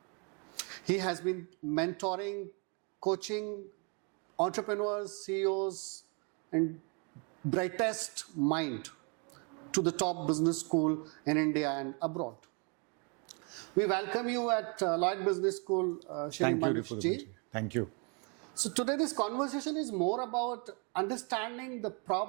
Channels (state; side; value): quieter; left; 35.2 dB